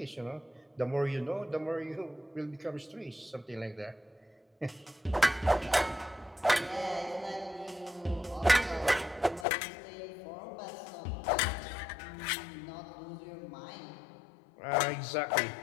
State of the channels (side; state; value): right; drops out; at 9.5 s